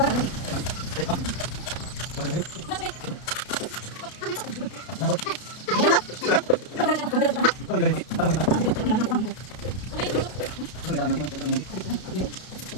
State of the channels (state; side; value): late; right; 32 ms